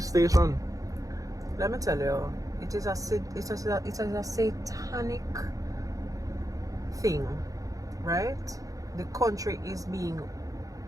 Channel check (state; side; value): late; left; 0.17 ms